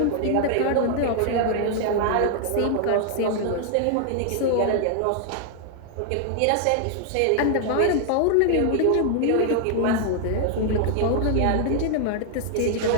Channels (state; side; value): different; both; correlation 0.00